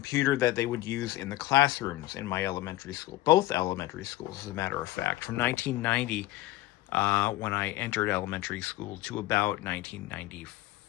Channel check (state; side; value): quieter; right; 16.7 dB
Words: that they would use in the classrooms in my elementary school, both elementary schools, as a matter of fact, from 1990, when I entered elementary school, to about